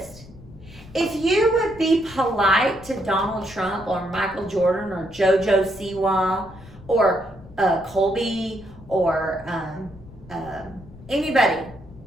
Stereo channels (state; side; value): noise; left; rumble, 20 dB below the sound